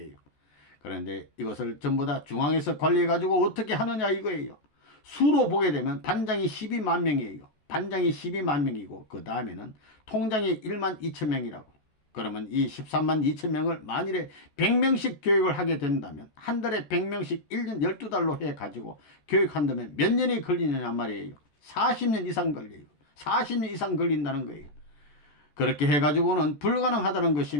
그런데 이것을 전부 다 중앙에서 관리해가지고 어떻게 하느냐 이거예요. 수로 보게 되면 반장이 12만 명이에요. 반장이 12만 명이고 그 다음에는 통장이 1만 2천 명이라고. 그러면 이 13만 2천 명을 만일에 100명씩 교육을 하게 된다면 한 달에 100명씩 1년 12달로 해가지고 교육한다면 몇 년이 걸리느냐 말이에요. 40년 이상 걸려요. 40년 이상 걸린다는 거예요. 그렇게 해가지고는 불가능하다는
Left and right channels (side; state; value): right; late; 14 ms